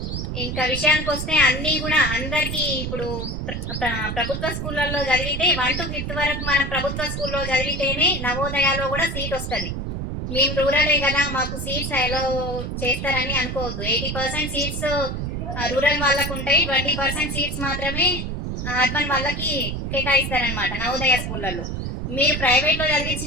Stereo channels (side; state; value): right; noise; rumble, 4 dB below the sound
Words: ఇంకా విషయానికి వస్తే అన్నీ కూడా అందరికీ ఇప్పుడు ప్రభుత్వ స్కూళ్ళల్లో చదివితే 1 to 5th వరకు మనం ప్రభుత్వ స్కూల్లో చదివితేనే నవోదయాలో కూడా సీట్ వస్తుంది. మేము రూరలే కదా, మాకు సీట్స్ అలో చేస్తారని అనుకోవద్దు. 80% సీట్స్ రూరల్ వాళ్ళకు ఉంటాయి, 20% సీట్స్ మాత్రమే అర్బన్ వాళ్ళకి కేటాయిస్తారనమాట నవోదయ స్కూళ్ళల్లో. మీరు ప్రైవేట్ లో